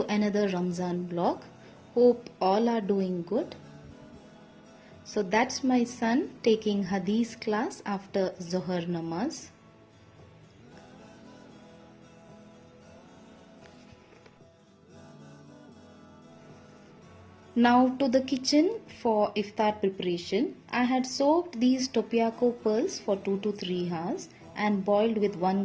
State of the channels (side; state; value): both; identical; correlation 1.00